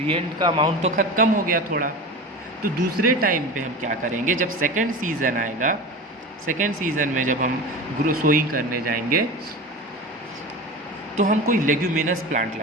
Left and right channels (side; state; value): both; normal; correlation 0.29